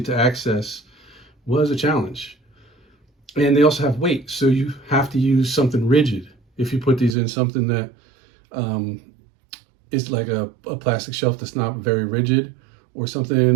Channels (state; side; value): drops out; left; at 7.2 s